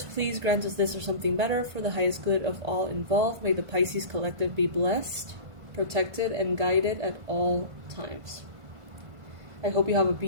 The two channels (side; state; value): left; late; 1.5 ms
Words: please grant us this or something better for the highest good of all involved. May the Pisces collective be blessed, protected, and guided at all times. I hope you have a